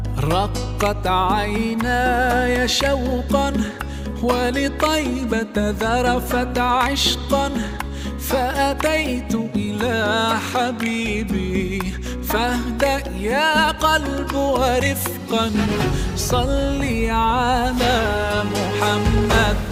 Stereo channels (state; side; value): identical; both; correlation 1.00